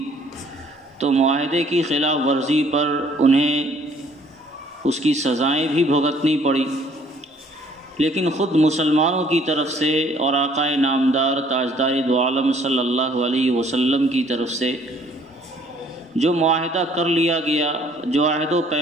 تو معاہدے کی خلاف ورزی پر انہیں اس کی سزائیں بھی بھگتنی پڑی، لیکن خود مسلمانوں کی طرف سے اور آقا نامدار تاجدار دو عالم صلی اللہ علیہ وسلم کی طرف سے جو معاہدہ کر لیا گیا، جو عہد و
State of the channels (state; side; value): normal; both; correlation 0.60